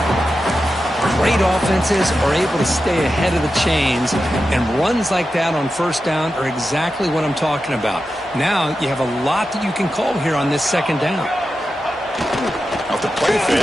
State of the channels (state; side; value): normal; both; correlation 0.91